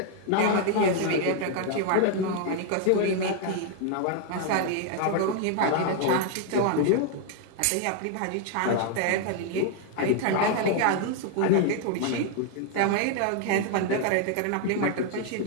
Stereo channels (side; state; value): both; different; correlation 0.00